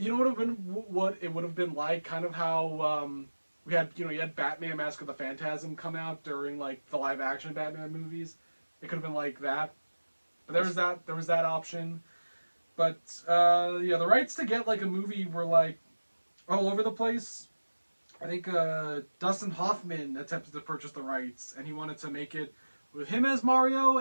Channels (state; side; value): inverted; both; correlation -1.00